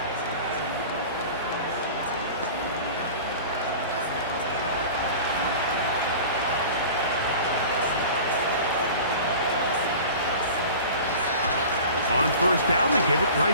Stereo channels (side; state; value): both; inverted; correlation -0.38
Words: On first down, they give it